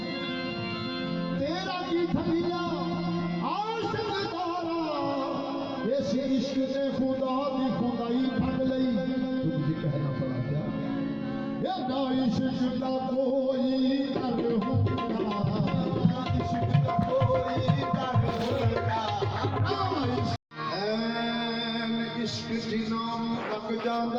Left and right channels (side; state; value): both; identical; correlation 1.00